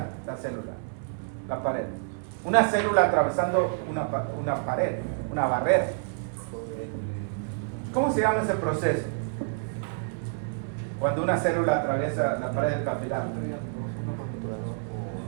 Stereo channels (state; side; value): silent; left; 59 dB below the other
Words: la célula? La pared. Una célula atravesando una pared, una barrera. ¿Cómo se llama ese proceso? Cuando una célula atraviesa la pared del capilar.